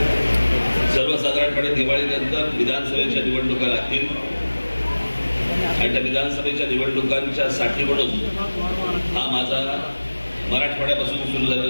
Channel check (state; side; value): inverted; both; correlation -1.00